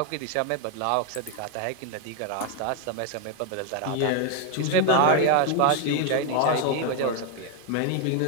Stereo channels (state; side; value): different; both; correlation 0.01